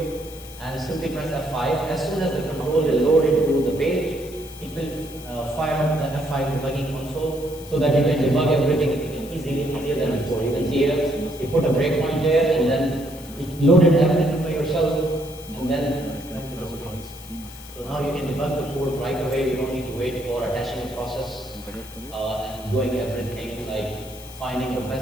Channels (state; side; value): noise; left; hiss, 18 dB below the sound